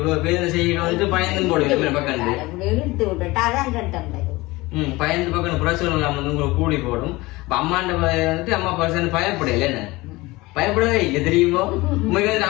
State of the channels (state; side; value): quieter; right; 21.2 dB